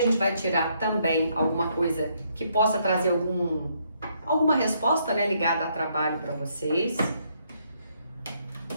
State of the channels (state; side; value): inverted; both; correlation -0.72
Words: gente vai tirar também alguma coisa que possa trazer alguma resposta, né, ligada a trabalho para vocês.